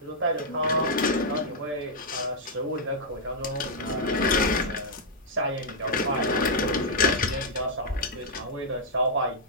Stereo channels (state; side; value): normal; both; correlation -0.06